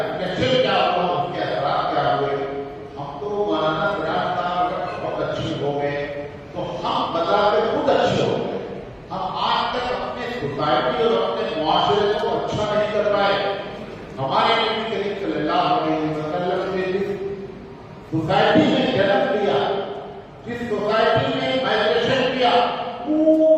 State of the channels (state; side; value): identical; both; correlation 1.00